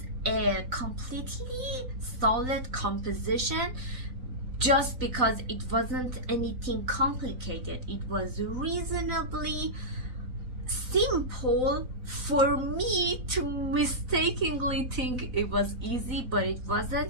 a completely solid composition just because it wasn't anything complicated. It was reasonably simple for me to mistakenly think it was easy, but it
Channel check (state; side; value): late; left; 4.0 ms